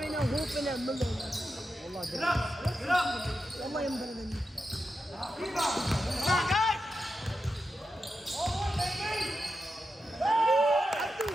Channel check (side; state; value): both; normal; correlation 0.89